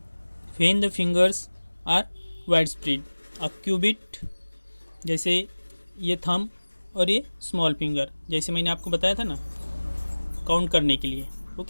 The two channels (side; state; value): both; inverted; correlation -1.00